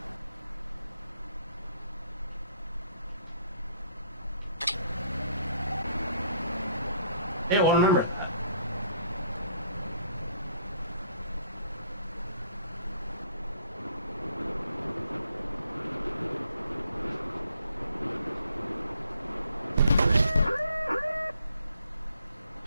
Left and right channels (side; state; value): both; inverted; correlation -0.63